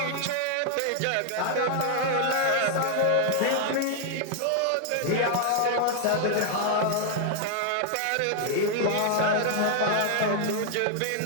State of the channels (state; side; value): different; both; correlation 0.00